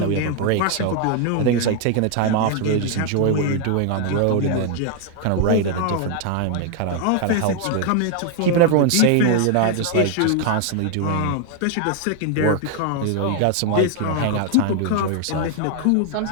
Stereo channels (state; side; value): different; both; correlation 0.00